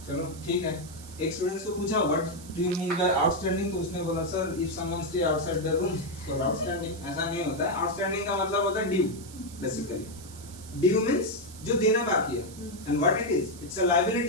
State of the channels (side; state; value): right; noise; hiss, 17 dB below the sound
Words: चलो ठीक है, एक स्टूडेंट्स को पूछा what do you mean by outstanding, तो उसने बोला sir if someone stay outside the room तो आउटस्टैंडिंग। ऐसा नहीं होता है, आउटस्टैंडिंग का मतलब होता है ड्यू, बेसिकली ड्यू मींस जो देना बाकी है, and what it is, it's a